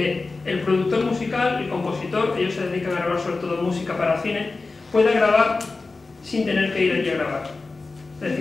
el productor musical, el compositor, ellos se dedican a grabar sobre todo música para cine, pueda grabar sin tener que ir allí a grabar. Es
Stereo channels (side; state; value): right; quieter; 3.7 dB